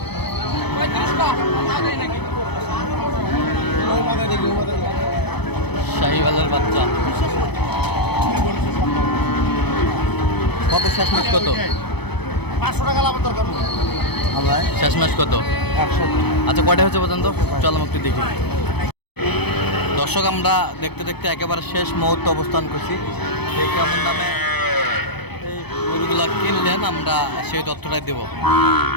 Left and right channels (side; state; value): right; late; 0.98 ms